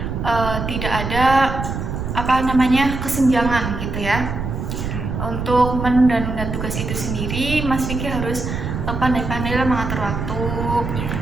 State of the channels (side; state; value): right; noise; rumble, 4 dB below the sound